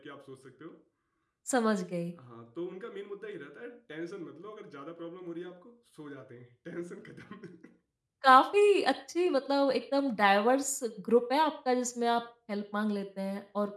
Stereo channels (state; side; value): identical; both; correlation 1.00